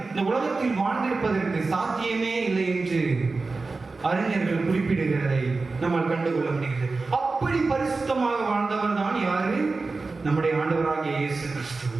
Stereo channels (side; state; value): left; quieter; 3.8 dB